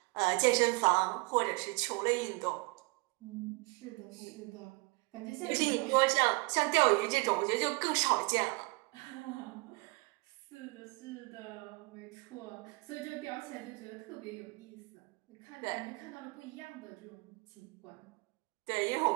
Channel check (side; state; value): left; quieter; 27.8 dB